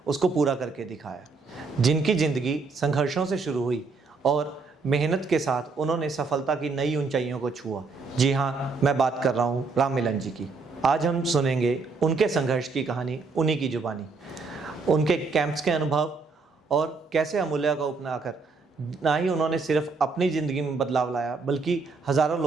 उसको पूरा करके दिखाया। जिनकी ज़िंदगी संघर्षों से शुरू हुई और मेहनत के साथ उन्होंने सफलता की नई ऊंचाइयों को छुआ। जी हाँ, मैं बात कर रहा हूँ राम मिलन जी की। आज हम सुनेंगे उनके संघर्ष की कहानी, उन्हीं की जुबानी, उनके कैंप्स के अनुभव और कैसे अमूल्य को अपनाकर ना ही उन्होंने सिर्फ अपनी ज़िंदगी में बदलाव लाया, बल्कि हज़ारों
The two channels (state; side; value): quieter; left; 4.3 dB